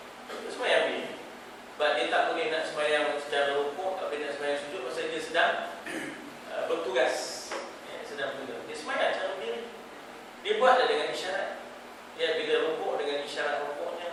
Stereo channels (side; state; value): both; identical; correlation 1.00